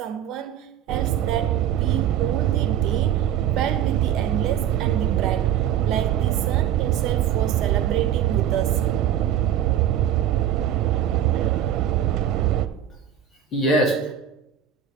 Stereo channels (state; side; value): quieter; left; 10.0 dB